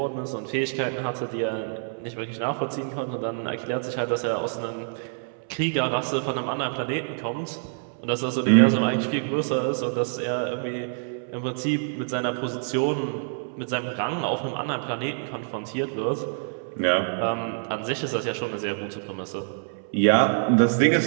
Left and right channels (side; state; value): left; silent; 61 dB below the other